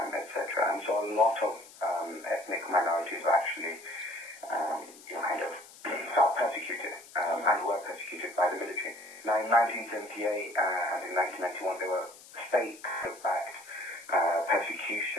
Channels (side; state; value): left; noise; hiss, 20 dB below the sound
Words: And so a lot of ethnic minorities were actually kind of felt persecuted and were persecuted by the military. Now in 1978 and in 1991 there were state-backed